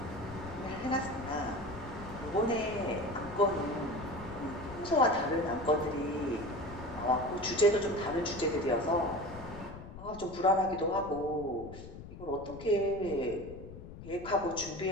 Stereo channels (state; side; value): noise; left; rumble, 13 dB below the sound